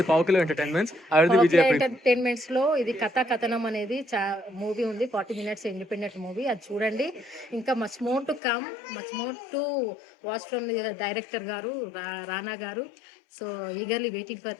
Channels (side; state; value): right; drops out; at 8.4 s